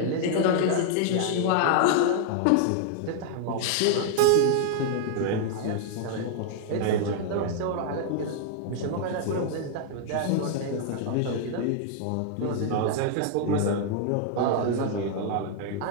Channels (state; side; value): different; both; correlation 0.00